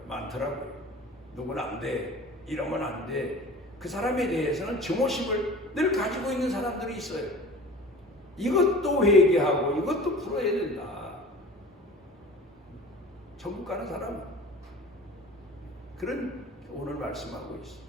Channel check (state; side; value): normal; both; correlation 0.40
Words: 많더라고요. 누구는 안 돼. 이러면 안 돼. 그 사람에 대해서는 증오심을 늘 가지고 있는 사람들이 있어요. 이것도 회개하고 이것도 풀어야 된다. 천국 가는 사람은 그런 오늘 말씀하고 있습니다.